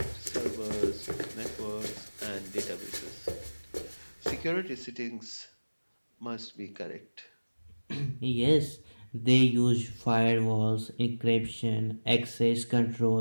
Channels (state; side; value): inverted; both; correlation -1.00